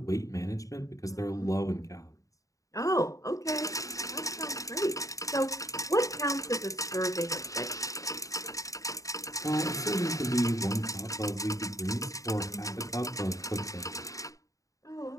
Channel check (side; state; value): right; late; 0.16 ms